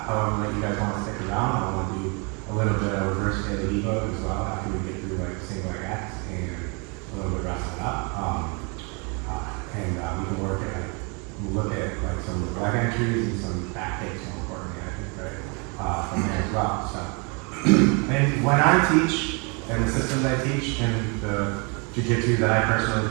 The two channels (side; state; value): left; quieter; 32.7 dB